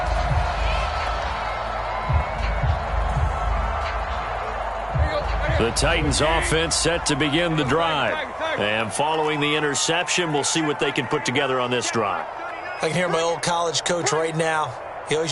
The Titans offense set to begin the drive. And following the interception, we'll see what they can put together on this drive. I can hear my old college coach right now. He always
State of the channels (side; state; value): both; identical; correlation 1.00